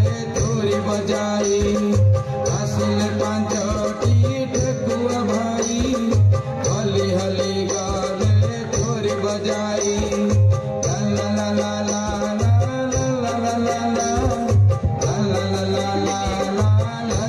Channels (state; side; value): identical; both; correlation 1.00